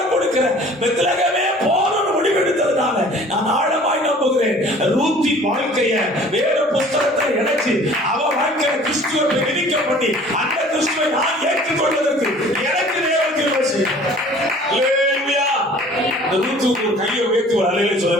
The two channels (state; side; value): normal; both; correlation 0.49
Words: கொடுக்கிற பெத்லகேமே போறன்னு முடிவெடுத்ததுனால நான் ஆழமாய் நம்புகிறேன், ரூத்தின் வாழ்க்கைய வேத புஸ்தகத்தை இணைச்சு அவ வாழ்க்கையை கிறிஸ்துவை விதிக்க பண்ணி அந்த கிறிஸ்துவை நான் ஏற்றுக்கொள்வதற்கு எனக்கு தேவன் கிருபை செய்யும். அல்லேலூயா. ரூத்துக்கு கையை உயர்த்தி ஒரு அல்லேலூயா